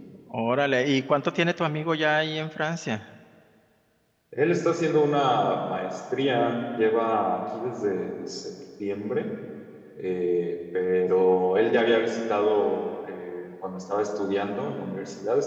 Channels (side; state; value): both; identical; correlation 1.00